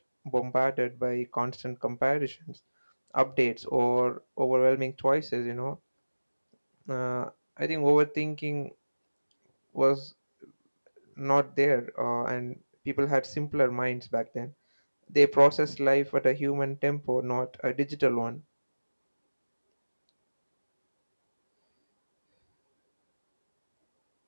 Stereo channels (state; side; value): inverted; both; correlation -1.00